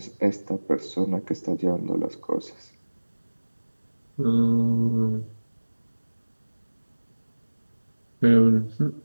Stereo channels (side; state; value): both; inverted; correlation -1.00